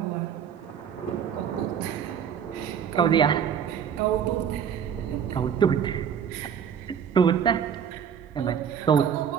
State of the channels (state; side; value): quieter; left; 8.0 dB